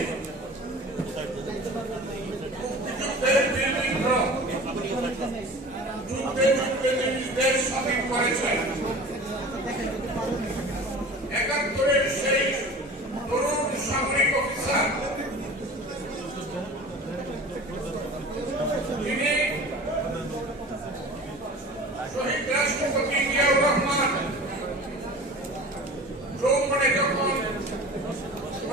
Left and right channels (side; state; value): both; normal; correlation 0.39